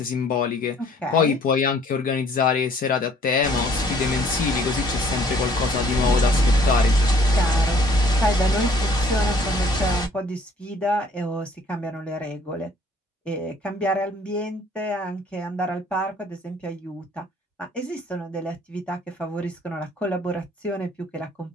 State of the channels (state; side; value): normal; both; correlation 0.58